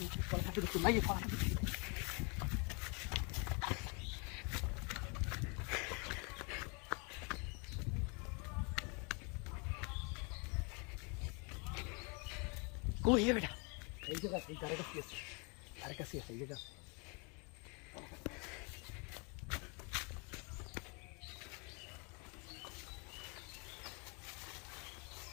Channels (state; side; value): quieter; right; 33.0 dB